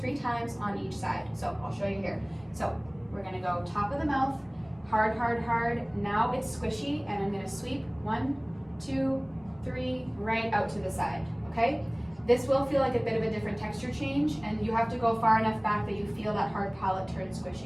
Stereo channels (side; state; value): right; noise; hum, 27 dB below the sound